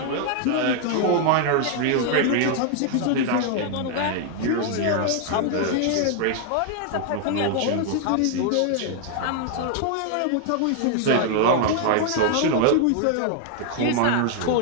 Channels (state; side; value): different; both; correlation 0.00